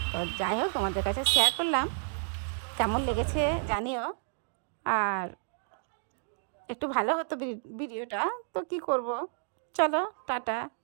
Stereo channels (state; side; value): silent; left; digital silence